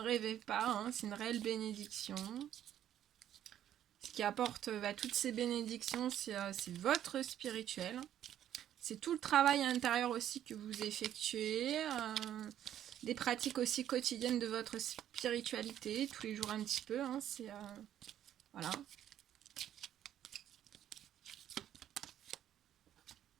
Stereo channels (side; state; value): left; quieter; 11.0 dB